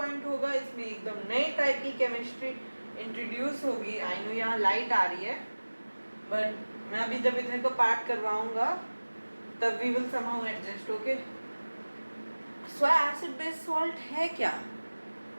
होगा। इसमें एकदम नई टाइप की केमिस्ट्री इंट्रोड्यूस होगी। आई नो यहाँ लाइट आ रही है, बट मैं अभी जब इतने को पार्ट करवाऊंगा तब we will somehow adjust. Okay, so acid base salt है क्या?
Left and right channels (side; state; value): both; inverted; correlation -1.00